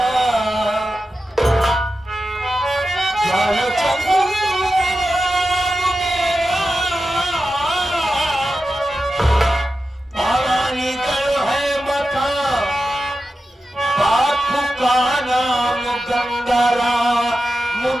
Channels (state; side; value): normal; both; correlation 0.92